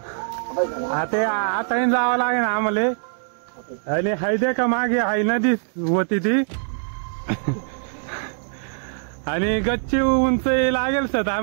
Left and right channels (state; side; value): silent; left; digital silence